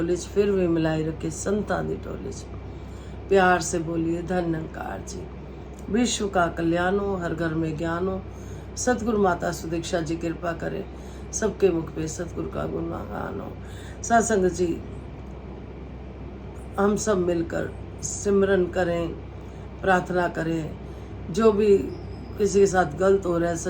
फिर भी मिलाई रखे संतां दी टोलिच। प्यार से बोलिए धन निरंकार जी। विश्व का कल्याण हो, हर घर में ज्ञान हो। सतगुरु माता सुदीक्षा जी कृपा करे, सबके मुख पे सतगुरु का गुणगान हो। सत्संग जी, हम सब मिलकर सिमरन करें, प्रार्थना करें। जो भी किसी के साथ गलत हो रहा है,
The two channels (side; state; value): both; identical; correlation 1.00